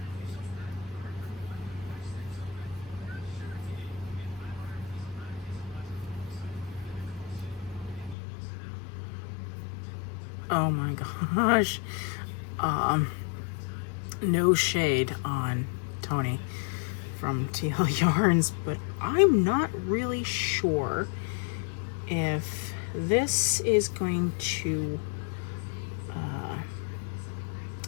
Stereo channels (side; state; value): right; drops out; at 8.2 s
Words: Oh my gosh. No shade on Tony from TL Yarns, but I'm not really sure if this is going to